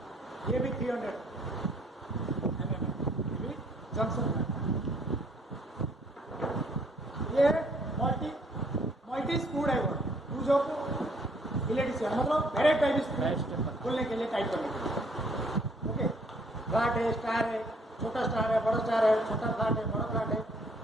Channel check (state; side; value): normal; both; correlation 0.64